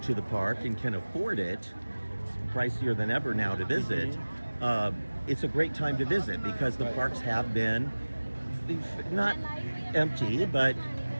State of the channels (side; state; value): both; inverted; correlation -1.00